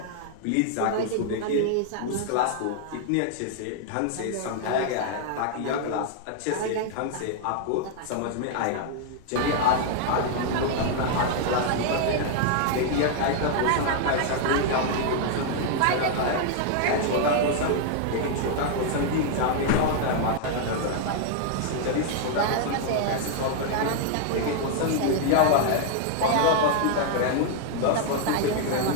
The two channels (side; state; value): both; different; correlation 0.00